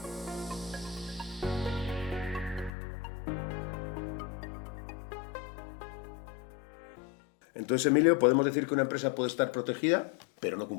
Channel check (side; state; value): right; drops out; at 2.7 s